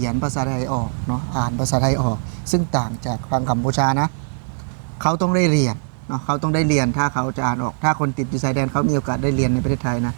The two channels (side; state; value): left; silent; 65 dB below the other